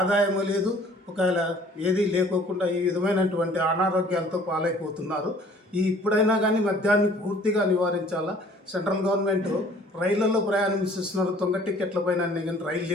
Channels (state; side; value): normal; both; correlation 0.54